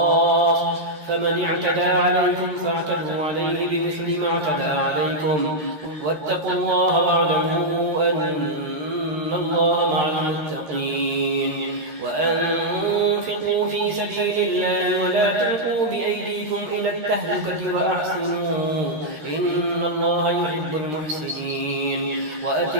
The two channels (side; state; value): left; late; 13 ms